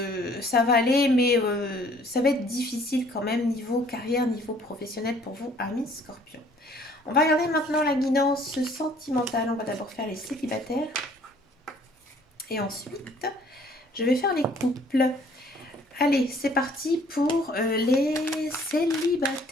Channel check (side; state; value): both; normal; correlation 0.58